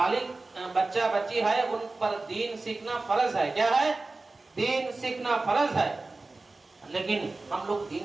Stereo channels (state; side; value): quieter; left; 3.4 dB